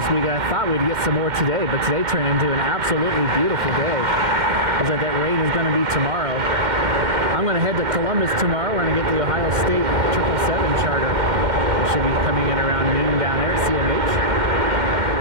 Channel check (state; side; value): late; left; 2.1 ms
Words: We'd get some more today, but today turned into an absolutely beautiful day. Looks like that rain is going to be tomorrow. I'm going to head to Columbus tomorrow. We're going to get the Ohio State 777 charter. It should be coming in around noon down there at CMH.